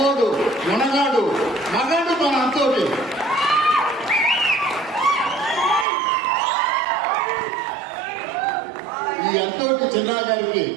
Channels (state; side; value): drops out; left; at 5.9 s